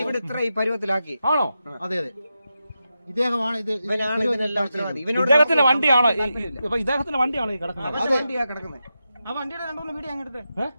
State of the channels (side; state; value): both; inverted; correlation -0.89